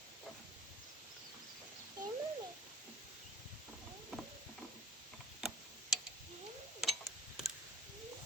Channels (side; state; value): both; normal; correlation 0.45